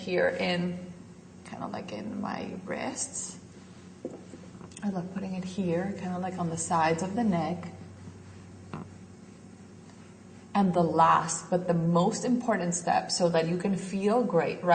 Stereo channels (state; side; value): identical; both; correlation 1.00